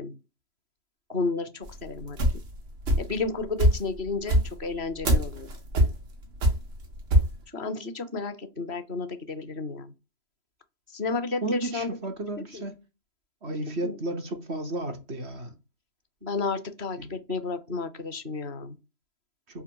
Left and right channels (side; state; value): left; late; 3.0 ms